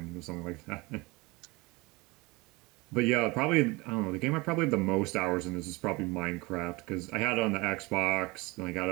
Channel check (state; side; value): quieter; left; 24.2 dB